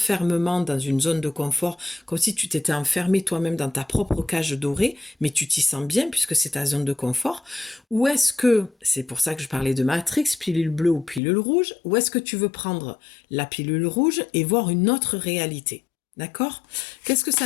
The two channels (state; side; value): drops out; right; at 11.2 s